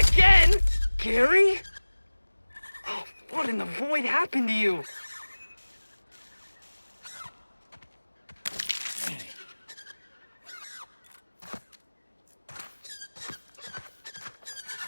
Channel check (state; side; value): inverted; both; correlation -1.00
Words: Gary? Oh, what in the void happened to you?